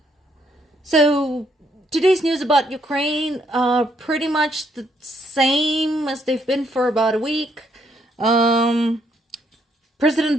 So today's news about Ukraine are pretty much the same as they've been for about a week.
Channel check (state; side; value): normal; both; correlation 0.72